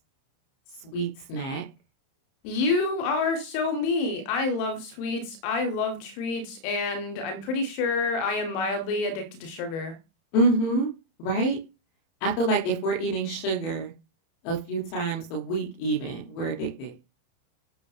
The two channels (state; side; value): late; right; 30 ms